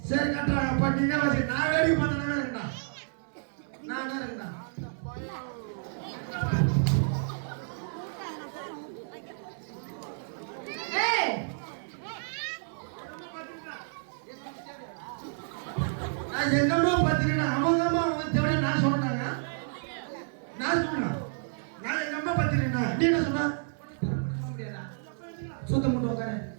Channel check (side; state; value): left; silent; 58 dB below the other